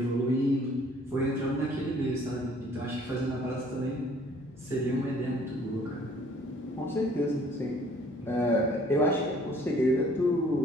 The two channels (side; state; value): both; normal; correlation 0.57